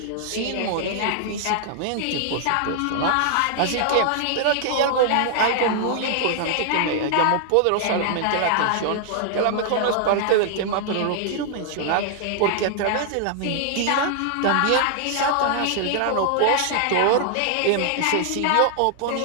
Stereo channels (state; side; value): different; both; correlation 0.00